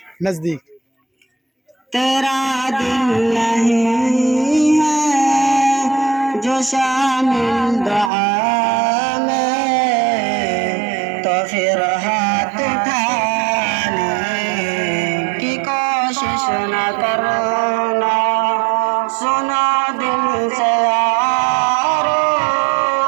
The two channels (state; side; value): drops out; left; at 8.1 s